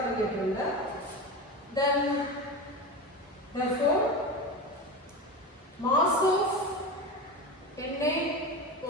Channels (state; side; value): normal; both; correlation 0.24